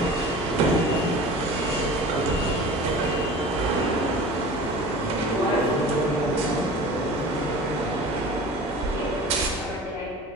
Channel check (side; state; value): both; normal; correlation 0.39